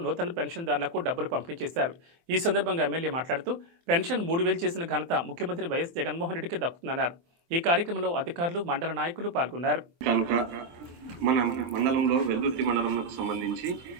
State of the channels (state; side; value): late; left; 24 ms